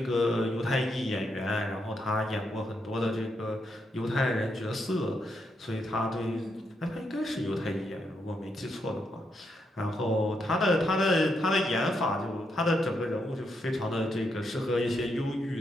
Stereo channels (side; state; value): both; normal; correlation 0.80